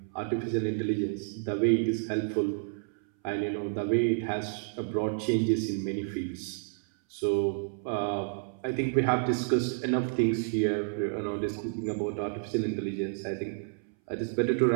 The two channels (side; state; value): left; silent; 58 dB below the other